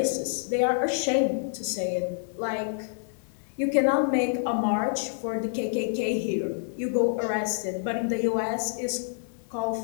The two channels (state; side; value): silent; right; 60 dB below the other